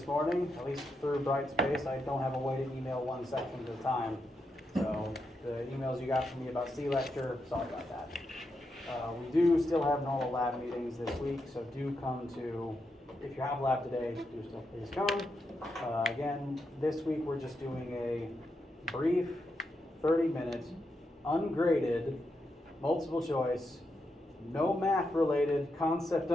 morning. At least through Brightspace, I don't have a way to email one section at a time. So the emails you got from me about C-Lecture, sorry about that. We do still have normal lab meetings this week, so do come to, if you have lab today, do still please come. Again, this week we're just doing a brief 30-minute, ungraded, multiple choice, no math related, concept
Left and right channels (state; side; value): normal; both; correlation 0.84